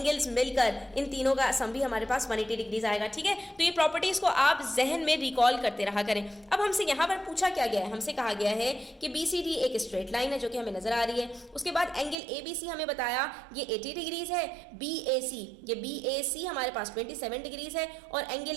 मिलकर इन तीनों का सम भी हमारे पास 180 डिग्रीज आएगा, ठीक है। तो ये प्रॉपर्टीज को आप जहन में रिकॉल करते रहा करें। अब हमसे यहाँ पर पूछा क्या गया है? हमसे कहा गया है कि BCD एक स्ट्रेट लाइन है जो कि हमें नजर आ रही है। उसके बाद एंगल ABC हमें बताया ये 80 डिग्रीज है। BAC हमारे पास 27 डिग्रीज है और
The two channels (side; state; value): left; drops out; at 12.2 s